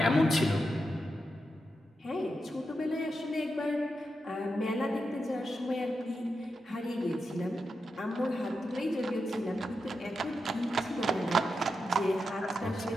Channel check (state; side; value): normal; both; correlation 0.87